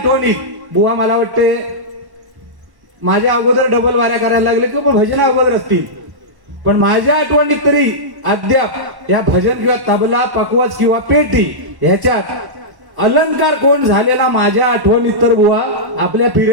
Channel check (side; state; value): left; late; 1.1 ms